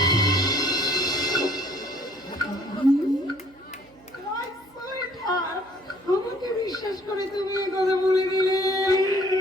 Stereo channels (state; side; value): noise; right; hum, 28 dB below the sound